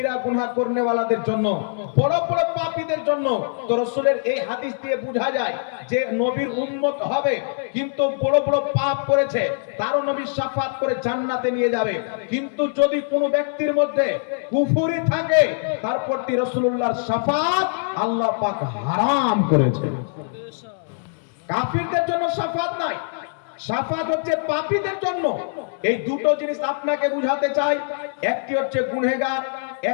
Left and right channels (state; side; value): silent; right; digital silence